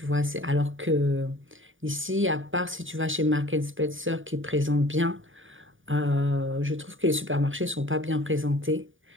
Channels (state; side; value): late; left; 0.57 ms